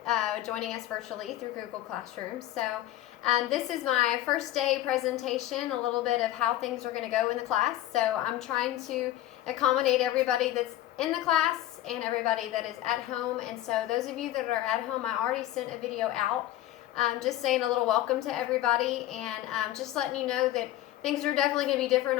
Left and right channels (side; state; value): right; quieter; 14.1 dB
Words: joining us virtually through Google Classroom. So this is my first day presentation, a little bit of how things are going to go in the class. So I'm trying to accommodate everybody that's in the class and everybody that is at home. And so those of you that are at home, I already sent a video out just saying a little welcome to everybody and just letting you know that things are definitely going to be different